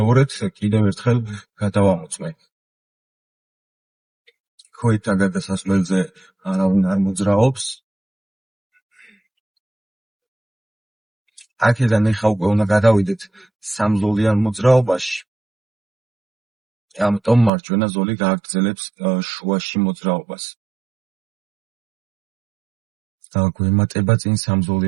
კიდევ ერთხელ გადავამოწმე. ქოითა გადასასვლელზე არავინ არ მოძრაობს. აქედან ეხა უკვე უნდა გადავიდეთ სამზოლიან მოძრაობაში. ამიტომ მარჯვენა ზოლი გააგრძელებს შუაში მოძრაობას. გვემატება წინ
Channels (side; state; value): left; drops out; at 17.5 s